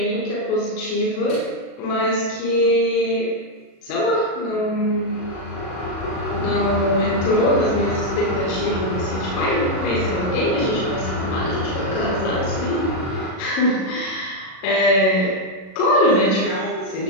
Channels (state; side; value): late; right; 37 ms